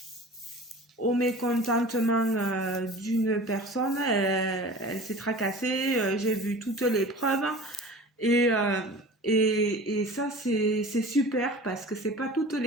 au mécontentement d'une personne. Elle s'est tracassée. J'ai vu toutes les preuves. Et, euh, et ça, c'est super parce que c'est pas toutes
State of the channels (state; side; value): normal; both; correlation 0.39